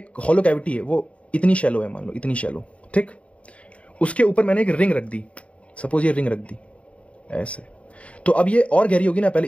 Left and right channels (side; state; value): right; late; 0.063 ms